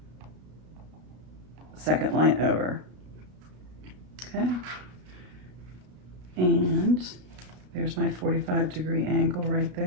second line over. Okay. And there's my 45-degree angle right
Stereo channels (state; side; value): late; left; 33 ms